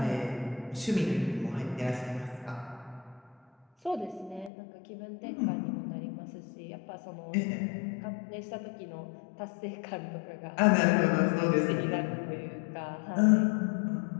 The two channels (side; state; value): right; drops out; at 4.5 s